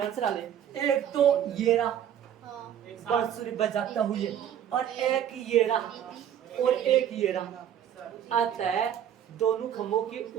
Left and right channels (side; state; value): left; quieter; 9.8 dB